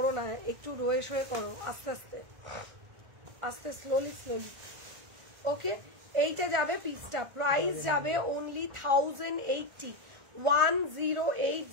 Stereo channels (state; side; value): late; left; 1.4 ms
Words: না, একটু রয়ে শোয়ে করো, আস্তে আস্তে আস্তে, স্লোলি স্লোলি। ওকে, এইটা যাবে পিসটা, প্রাইস যাবে অনলি 1080,